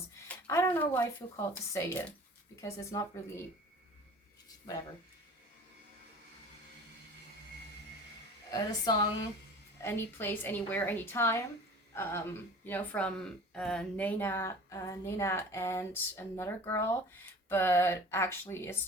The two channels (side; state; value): both; normal; correlation 0.42